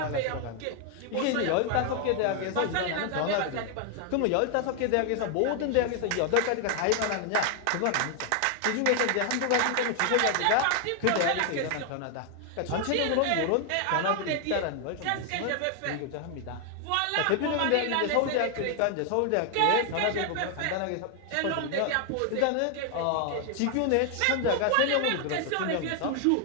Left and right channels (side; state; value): both; different; correlation 0.00